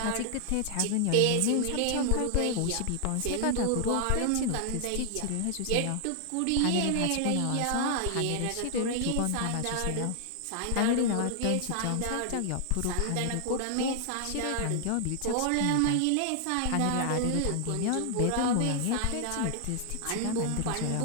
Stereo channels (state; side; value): different; both; correlation 0.00